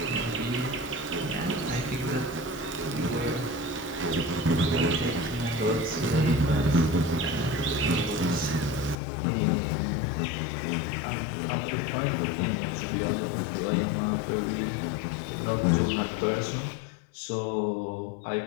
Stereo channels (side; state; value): right; drops out; at 9.0 s